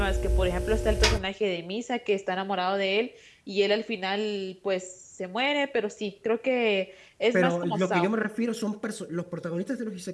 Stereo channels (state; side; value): identical; both; correlation 1.00